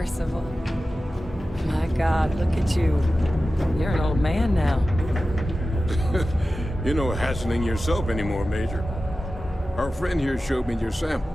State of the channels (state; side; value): normal; both; correlation 0.95